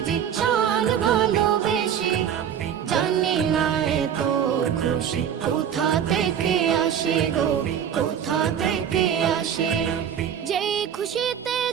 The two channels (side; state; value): left; quieter; 8.8 dB